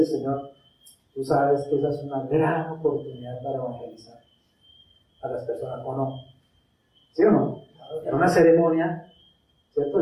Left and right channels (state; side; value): identical; both; correlation 1.00